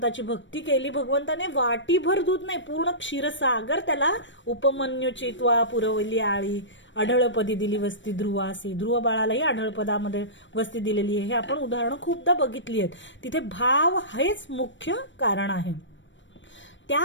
भक्ती केली. भगवंताने वाटीभर दूध नाही, पूर्ण क्षीरसागर त्याला उपमन्यूची त्वा पुरवली आळी, अढळपदी दिली वस्ती ध्रुवासी. ध्रुव बाळालाही अढळपदामध्ये वस्ती दिलेली आहे. हे आपण उदाहरणं खूपदा बघितली आहेत. तिथे भाव हेच मुख्य कारण आहे.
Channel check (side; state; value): right; late; 0.54 ms